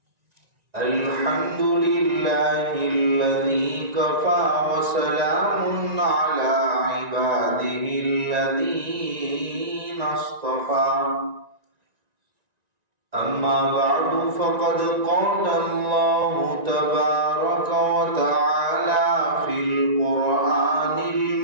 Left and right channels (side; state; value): left; late; 1.9 ms